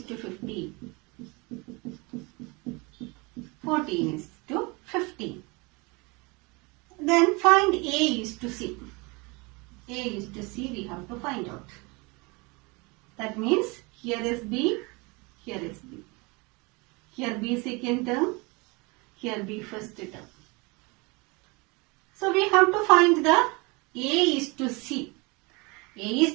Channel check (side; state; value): left; quieter; 27.2 dB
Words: to 15. 14 is to 15. Then find A is to C. A is to C we have to find out. That means here is B, here is B. Here B second term, here B first term. So we have to find the A is to C. A is